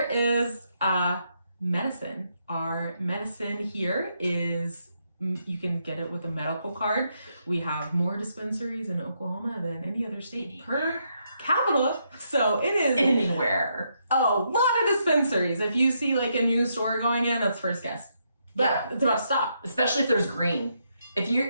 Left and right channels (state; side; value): inverted; both; correlation -0.78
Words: is medicine. Our medicine here is, you can get it with a medical card. We have more dispensaries in Oklahoma than any other state per capita. So it is anywhere. A lot of dispensaries. If you see a new store going in, that's first guess. But it's about to stop. Especially if there's green. If